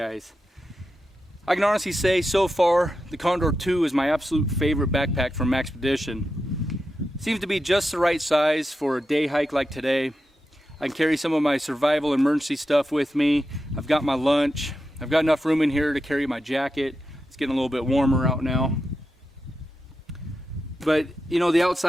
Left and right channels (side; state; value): both; normal; correlation 0.89